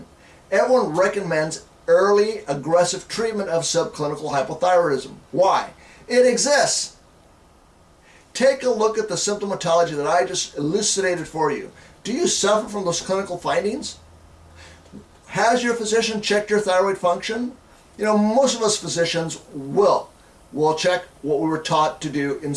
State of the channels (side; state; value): both; identical; correlation 1.00